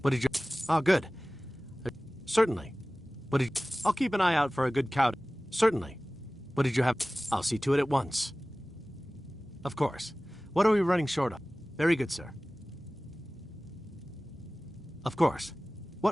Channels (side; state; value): both; normal; correlation 0.98